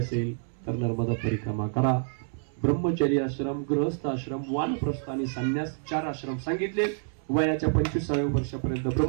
तर नर्मदा परिक्रमा करा. ब्रह्मचर्य आश्रम, गृहस्थ आश्रम, वानप्रस्थ आणि संन्यास 4 आश्रम सांगितले. वयाच्या 25व्या वर्षापर्यंत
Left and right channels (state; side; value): silent; left; 59 dB below the other